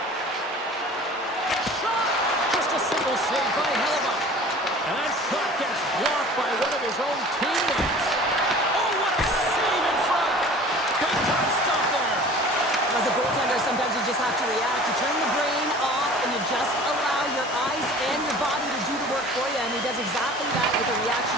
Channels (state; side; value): normal; both; correlation 0.44